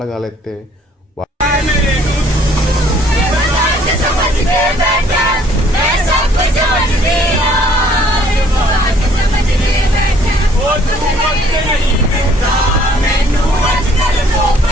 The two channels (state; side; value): normal; both; correlation 0.60